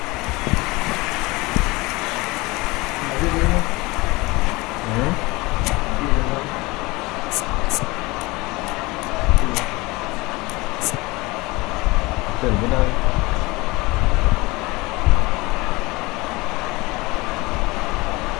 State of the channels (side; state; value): right; quieter; 22.9 dB